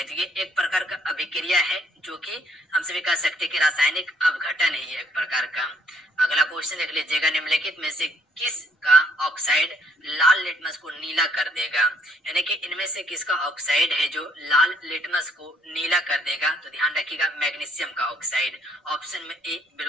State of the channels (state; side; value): normal; both; correlation 0.66